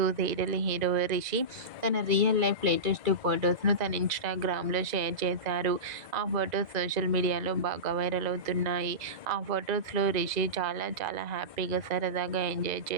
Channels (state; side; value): late; left; 2.0 ms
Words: సీరియల్ హీరో రిషి తన రియల్ లైఫ్ లేటెస్ట్ ఫొటోస్ను తన ఇన్స్టాగ్రామ్లో షేర్ చేశారు. ఆ ఫొటోస్ సోషల్ మీడియాలో బాగా వైరల్ అవుతున్నాయి. ఆ ఫొటోస్లో రిషి చాలా చాలా హ్యాపీగా సరదాగా ఎంజాయ్